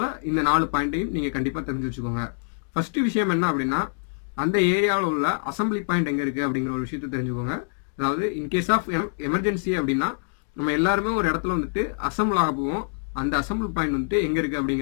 இந்த 4 பாயிண்ட்டையும் நீங்க கண்டிப்பா தெரிஞ்சு வச்சுக்கோங்க. ஃபர்ஸ்ட் விஷயம் என்ன அப்படின்னா, அந்த ஏரியாவில் உள்ள அசம்பிளி பாயிண்ட் எங்க இருக்கு அப்படிங்கிற ஒரு விஷயத்தை தெரிஞ்சுக்கோங்க. அதாவது இன்கேஸ் ஆஃப் எமர்ஜென்சி அப்படின்னா நம்ம எல்லாருமே ஒரு இடத்துல வந்துட்டு அசம்பிள் ஆக போவோம். அந்த அசம்பிள் பாயிண்ட் வந்துட்டு எங்க இருக்கு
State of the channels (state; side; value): silent; right; digital silence